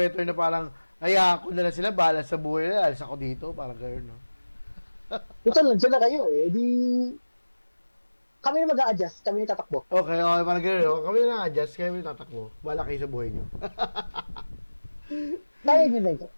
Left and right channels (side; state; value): both; inverted; correlation -1.00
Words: na parang, ko na lang sila, bahala sa buhay nila, alis ako dito, parang gano'n, no? Ito lang, dyan na kayo eh, di, kami na mag-a-adjust, kami na tatakbo. Okay, parang gano'n, no? Kami na adjust, kami na tatakbo. Bahala kayo sa buhay nyo. Kaya yun na ito.